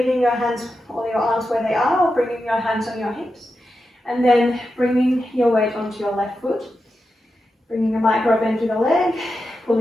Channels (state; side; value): normal; both; correlation 0.89